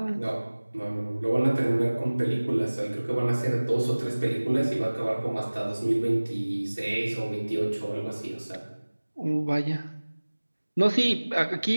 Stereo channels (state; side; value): inverted; both; correlation -1.00